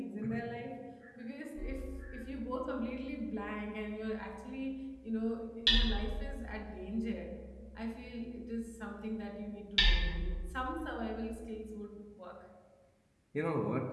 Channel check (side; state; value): both; identical; correlation 1.00